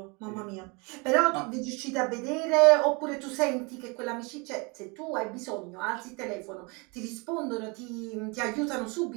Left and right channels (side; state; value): left; quieter; 29.6 dB